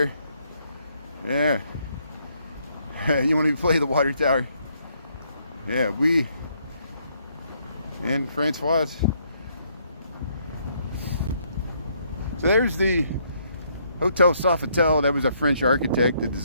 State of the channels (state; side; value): inverted; both; correlation -0.70